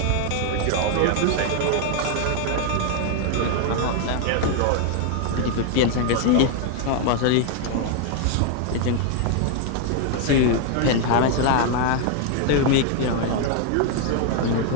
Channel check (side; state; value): both; different; correlation 0.00